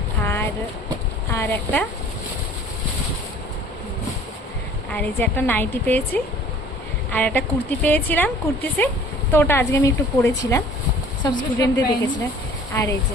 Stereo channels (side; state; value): both; normal; correlation 0.50